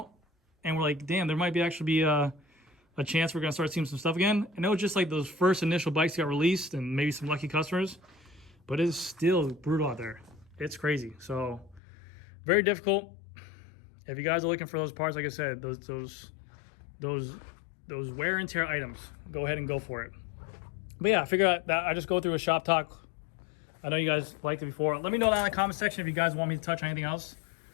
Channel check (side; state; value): right; drops out; at 11.8 s